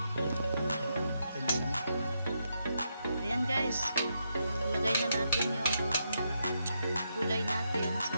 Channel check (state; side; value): inverted; both; correlation -0.81